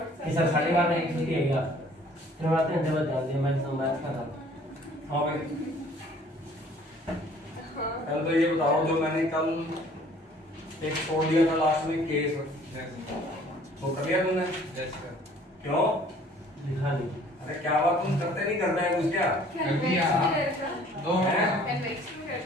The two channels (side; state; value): both; normal; correlation 0.55